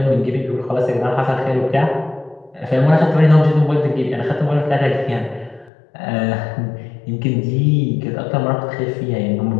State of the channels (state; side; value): drops out; right; at 5.7 s